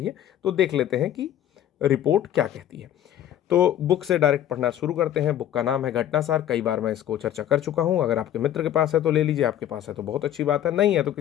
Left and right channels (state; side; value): quieter; right; 11.4 dB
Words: तो देख लेते हैं कि रिपोर्ट क्या कहती है। तो बुक से डायरेक्ट पढ़ना शुरू करते हैं। बुक का नाम है घटनासार। कई बार मैं इसको चर्चा कर चुका हूं। अगर आपके मित्र के पास है तो ले लीजिए, आपके पास है तो बहुत अच्छी बात है, नहीं है तो